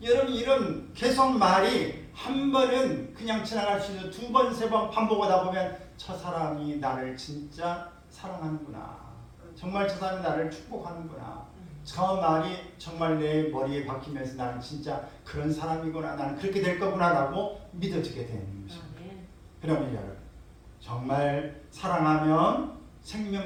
여러분 이런 계속 말이 한 번은 그냥 지나갈 수 있는 두 번, 세 번 반복하다 보면 저 사람이 나를 진짜 사랑하는구나. 정말 저 사람이 나를 축복하는구나. 저 말이 정말 내 머리에 박히면서 나는 진짜 그런 사람이구나. 나는 그렇게 될 거구나 라고 믿어지게 되는 것입니다. 그러면 여러분 정말 사랑하면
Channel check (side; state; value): both; identical; correlation 1.00